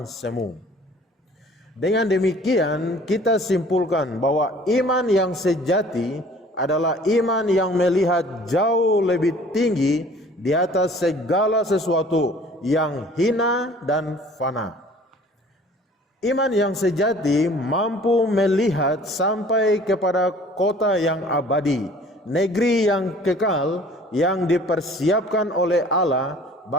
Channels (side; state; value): both; normal; correlation 0.50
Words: semu. Dengan demikian kita simpulkan bahwa iman yang sejati adalah iman yang melihat jauh lebih tinggi di atas segala sesuatu yang hina dan fana. Iman yang sejati mampu melihat sampai kepada kota yang abadi, negeri yang kekal yang dipersiapkan oleh Allah